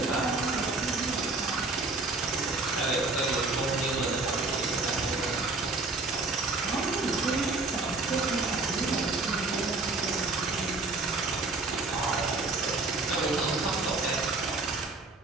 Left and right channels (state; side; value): quieter; left; 3.5 dB